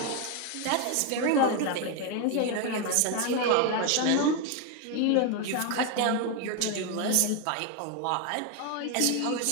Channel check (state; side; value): different; both; correlation 0.01